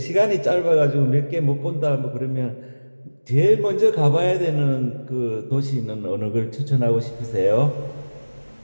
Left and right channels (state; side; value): inverted; both; correlation -1.00